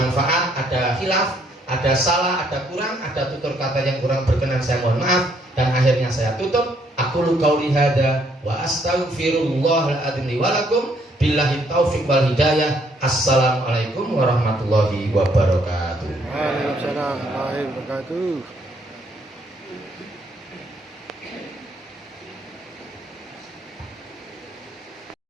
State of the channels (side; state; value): both; normal; correlation 0.69